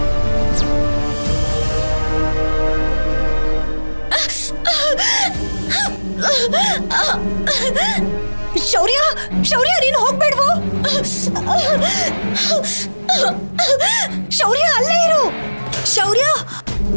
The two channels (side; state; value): both; inverted; correlation -1.00